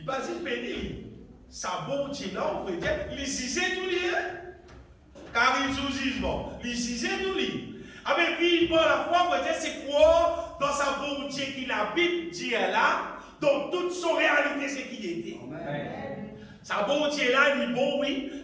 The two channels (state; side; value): identical; both; correlation 1.00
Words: battait béni. Ça, bon Dieu là, on peut dire, il disait tout lui. Car il sous jugement. Il disait tout lui. Avec vivre par la foi, on peut dire, c'est quoi dans sa bon Dieu qui la Bible dit là, dans toute son réalité, c'est qui était. Amen. Sa bon Dieu là, il est bon, oui.